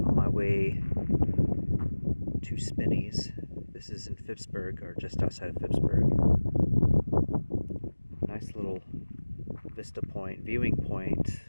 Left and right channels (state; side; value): inverted; both; correlation -1.00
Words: my way to Spinney's. This is in Phippsburg, or just outside of Phippsburg. Nice little vista point, viewing point